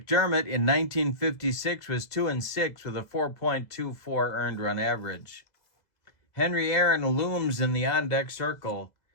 in 1956 was 2-6 with a 4.24 earned run average. Henry Aaron looms in the on-deck circle.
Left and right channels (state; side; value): late; right; 2.0 ms